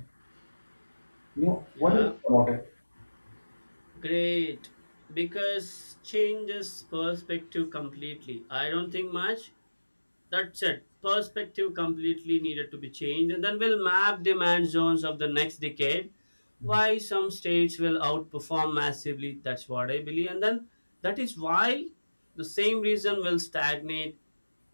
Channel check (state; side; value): inverted; both; correlation -1.00